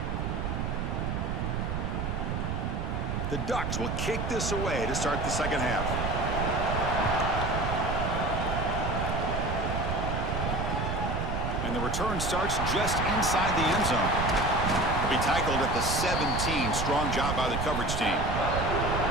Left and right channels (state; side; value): noise; right; rumble, 1 dB below the sound